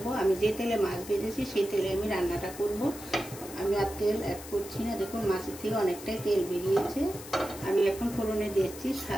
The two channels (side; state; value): left; noise; hiss, 14 dB below the sound